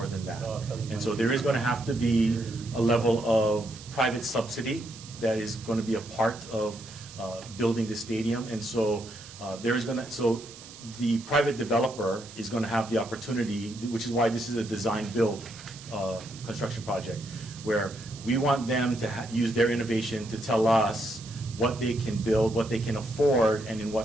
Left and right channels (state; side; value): noise; right; hiss, 17 dB below the sound